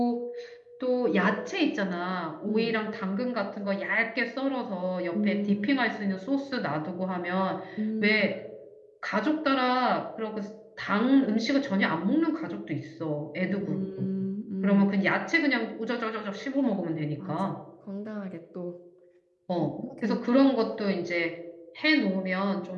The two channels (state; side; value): identical; both; correlation 1.00